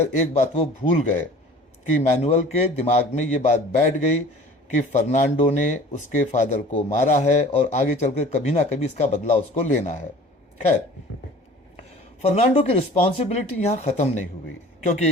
एक बात वो भूल गए कि मैनुअल के दिमाग में ये बात बैठ गई कि फर्नांडो ने उसके फादर को मारा है और आगे चलकर कभी ना कभी इसका बदला उसको लेना है। खैर, फर्नांडो की रिस्पॉन्सिबिलिटी यहाँ ख़त्म नहीं हुई, क्योंकि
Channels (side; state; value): both; normal; correlation 0.45